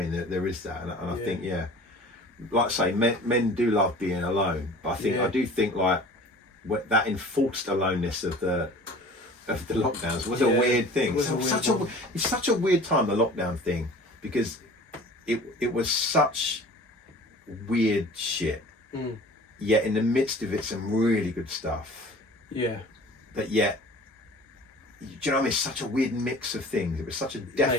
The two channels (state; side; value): normal; both; correlation 0.44